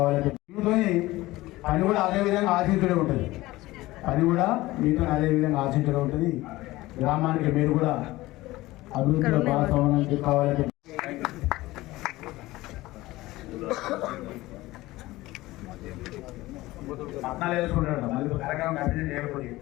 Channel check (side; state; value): right; quieter; 18.5 dB